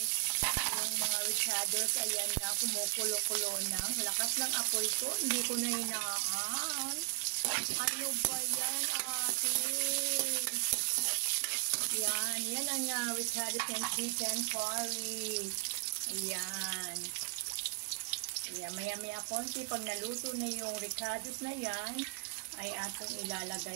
yung mga ricados. Ayan na, kumukulo-kulo ng lakas ng apoy ko. Hindi ko na hinaan. Ano ba yan, ate? Yan ang ricados ng chicken curry. Ayan. Ayan, maya-maya konti, pag naluto na yung ricados na yan, ay ating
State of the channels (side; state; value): left; quieter; 32.2 dB